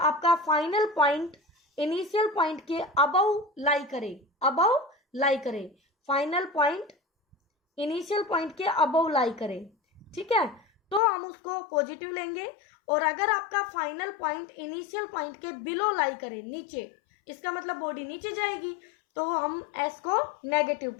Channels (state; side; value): drops out; right; at 11.0 s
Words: फाइनल पॉइंट इनिशियल पॉइंट के अबव लाई करे, अबव लाई करे, फाइनल पॉइंट इनिशियल पॉइंट के अबव लाई करे, ठीक है, तो हम उसको पॉजिटिव लेंगे। और अगर आपका फाइनल पॉइंट इनिशियल पॉइंट के बिलो लाई करे, नीचे, इसका मतलब बॉडी नीचे जाएगी, तो हम एस को नेगेटिव